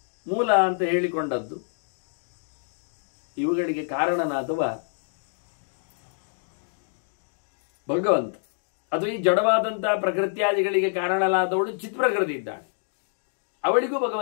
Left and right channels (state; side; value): silent; right; digital silence